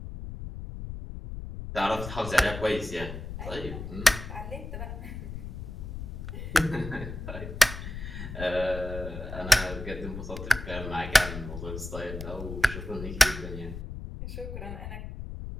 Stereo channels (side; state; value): left; noise; rumble, 8 dB below the sound